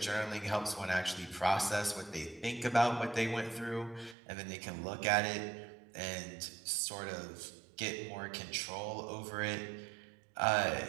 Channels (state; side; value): drops out; left; at 4.2 s